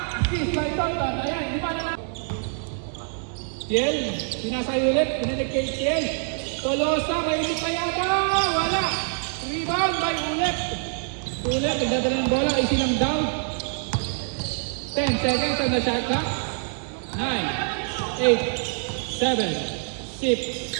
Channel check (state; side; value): silent; left; 59 dB below the other